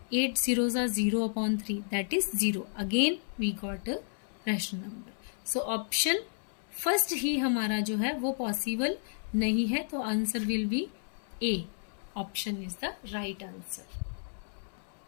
8 0 जा 0/3 that is 0। Again we got a rational number. So option first ही हमारा जो है वो पॉसिबल नहीं है, तो answer will be A. Option is the right answer.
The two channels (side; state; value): right; silent; 56 dB below the other